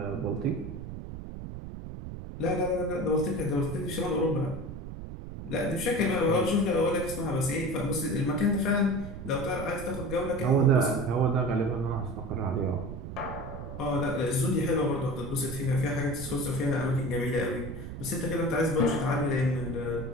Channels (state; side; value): noise; right; rumble, 9 dB below the sound